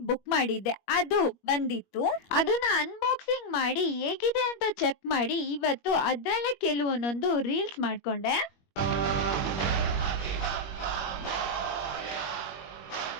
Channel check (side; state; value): right; late; 21 ms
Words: ಬುಕ್ ಮಾಡಿದ್ದೆ, ಅದು ಬಂದಿತ್ತು. ಅದನ್ನ ಅನ್ಬಾಕ್ಸಿಂಗ್ ಮಾಡಿ ಹೇಗಿದೆ ಅಂತ ಚೆಕ್ ಮಾಡಿ ಇವತ್ತು ಅದ್ರಲ್ಲೇ ಕೆಲವೊಂದೊಂದು ರೀಲ್ಸ್ ಮಾಡ್ಕೊಂಡೆ.